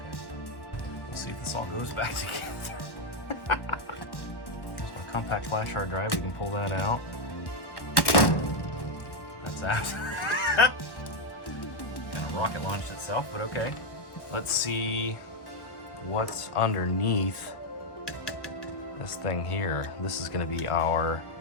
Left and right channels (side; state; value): right; late; 1.1 ms